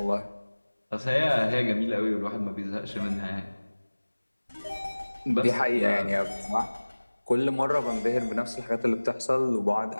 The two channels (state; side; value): inverted; both; correlation -1.00